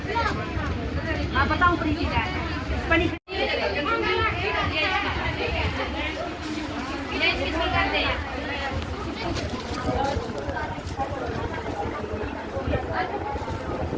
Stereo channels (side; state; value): both; identical; correlation 1.00